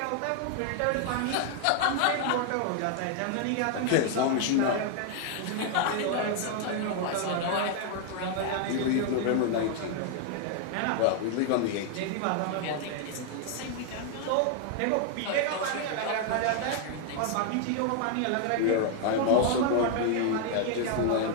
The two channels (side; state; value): both; different; correlation 0.00